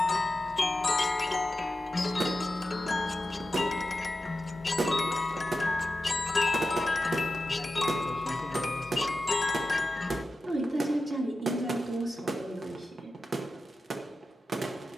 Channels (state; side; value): normal; both; correlation 0.92